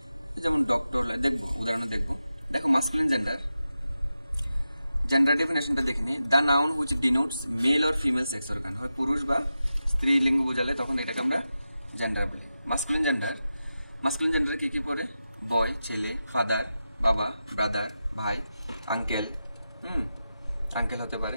যেমন ডক্টর দেখবো, উদাহরণ দেখবো। দেখো মাস্কুলিন জেন্ডার, জেন্ডার ডেফিনেশনটা দেখে নি, the noun which denotes male or female sex organ, হয় পুরুষ বা স্ত্রী লিঙ্গ বোঝালে তখন এটাকে আমরা জেন্ডার বলি। মাস্কুলিন জেন্ডার কি কি পড়ে, বয় ছেলে, ফাদার বাবা, ব্রাদার ভাই, আঙ্কেল, আঙ্কেল হতে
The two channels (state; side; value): inverted; both; correlation -0.91